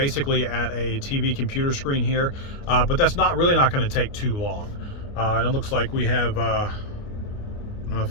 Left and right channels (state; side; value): late; right; 29 ms